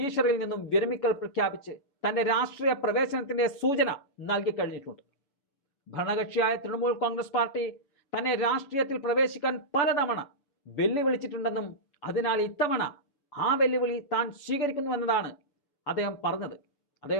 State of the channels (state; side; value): late; right; 6.9 ms